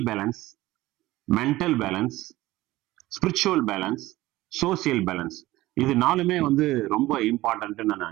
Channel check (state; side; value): quieter; left; 17.5 dB